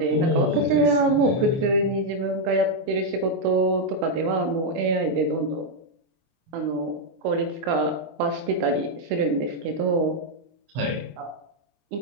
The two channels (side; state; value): left; late; 24 ms